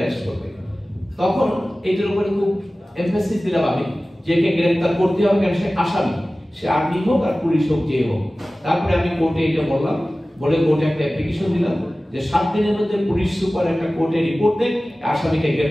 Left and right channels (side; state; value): both; normal; correlation 0.97